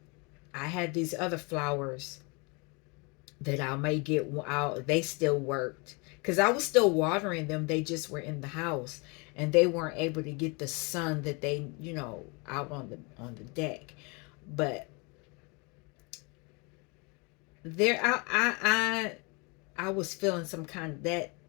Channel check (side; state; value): right; quieter; 30.5 dB